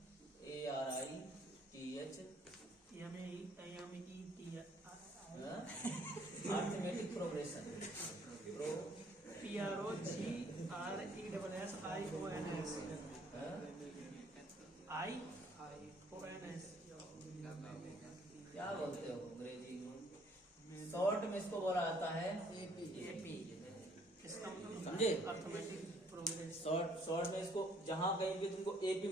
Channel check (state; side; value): normal; both; correlation 0.62